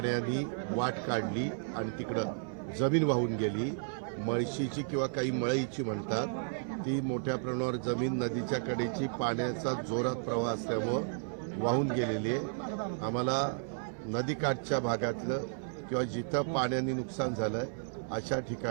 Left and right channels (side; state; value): left; silent; digital silence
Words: वाट काढली आणि तिकडं जमीन वाहून गेली. मळशीची किंवा काही मळईची म्हणतात ती मोठ्या प्रमाणावर जमीन नदीच्या कडेची पाण्याचा जोरात प्रवाह असल्यामुळं वाहून गेलेली आहे. आम्हाला नदीकाठच्या भागातलं किंवा जिथं पाण्याने नुकसान झालं अशा